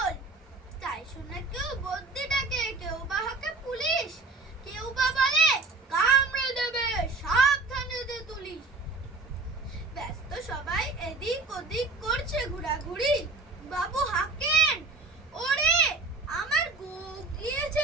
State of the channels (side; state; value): left; quieter; 3.6 dB